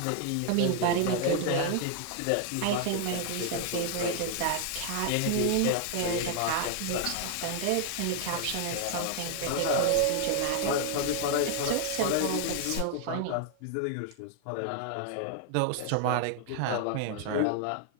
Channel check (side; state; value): both; different; correlation 0.00